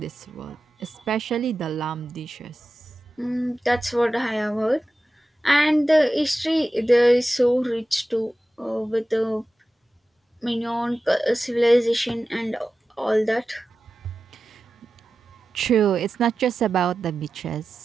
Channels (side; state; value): both; normal; correlation 0.93